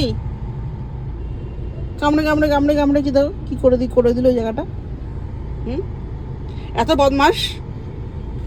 কামড়ে কামড়ে কামড়ে কামড়ে কি দাও কি করে দিল ওই জায়গাটা। হুম, এত বদমাস।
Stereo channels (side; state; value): both; identical; correlation 1.00